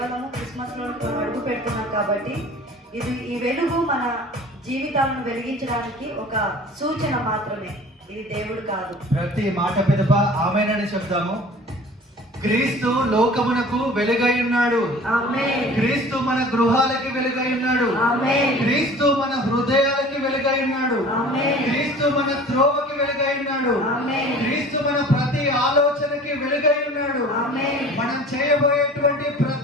క్రిస్మస్లో మనం అడుగు పెడుతున్నాం కాబట్టి ఈ వెలుగు మన జీవితాలను వెలిగించడానికి ఒక సూచన మాత్రమే, ఇది దేవుడు కాదు. ప్రతి మాట పిదప ఆమేనని చెప్తాము. క్రీస్తు లోకమునకు వెలుగై ఉన్నాడు. ఆమేన్. క్రీస్తు మన గృహాలకి వెలుగై ఉన్నాడు. ఆమేన్. క్రీస్తు మన హృదయాలకి వెలుగై ఉన్నాడు. ఆమేన్. క్రీస్తు మన త్రోవకి వెలుగై ఉన్నాడు. ఆమేన్. క్రీస్తు మన ప్రతి ఆలోచనకి వెలుగై ఉన్నాడు. ఆమేన్. మనం చేయబోయేటువంటి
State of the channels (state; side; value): normal; both; correlation 0.44